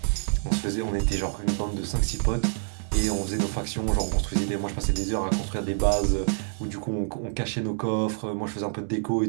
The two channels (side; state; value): left; silent; digital silence